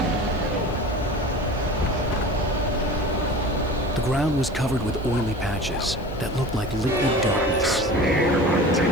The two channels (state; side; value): noise; left; hiss, 28 dB below the sound